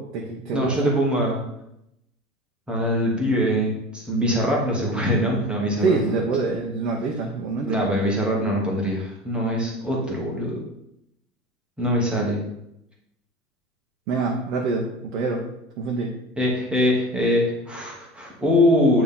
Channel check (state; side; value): normal; both; correlation 0.35